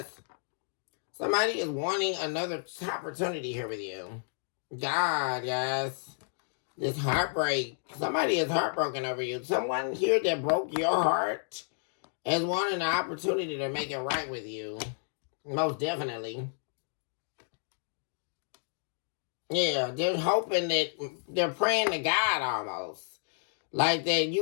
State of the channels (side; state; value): right; silent; digital silence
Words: Somebody is wanting another opportunity here with you. God, guys. This heartbreak. Somebody is heartbroken over you. Someone here that broke your heart is wanting an opportunity to make it right with you. Most definitely. Yeah, they're hoping that they're praying to God almost. Like that